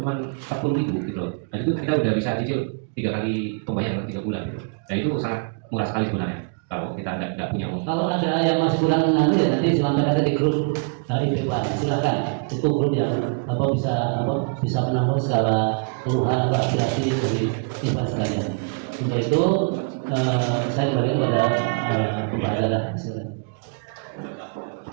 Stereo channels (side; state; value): left; quieter; 35.6 dB